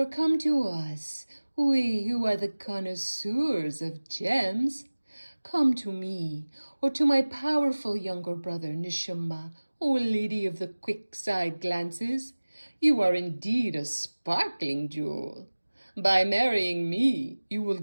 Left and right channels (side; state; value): both; inverted; correlation -1.00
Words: come to us, we who are the connoisseurs of gems. Come to me, or to my powerful younger brother Nishumba, O lady of the quick-side glances. You are indeed a sparkling jewel. By marrying me, you will